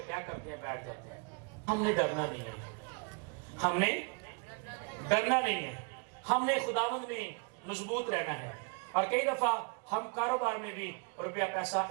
کیا کرتے ہیں؟ بیٹھ جاتے ہیں. ہم نے ڈرنا نہیں ہے, ہم نے ڈرنا نہیں ہے, ہم نے خداوند میں مضبوط رہنا ہے. اور کئی دفعہ ہم کاروبار میں بھی روپیہ پیسہ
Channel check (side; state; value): left; quieter; 36.4 dB